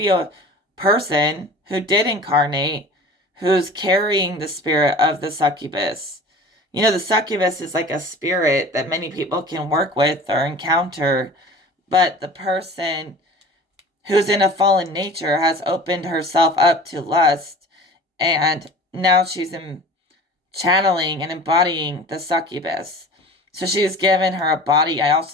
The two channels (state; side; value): normal; both; correlation 0.41